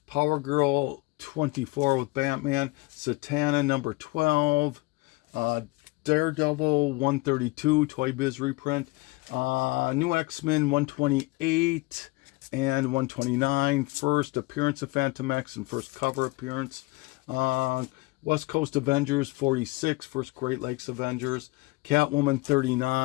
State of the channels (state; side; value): quieter; right; 23.7 dB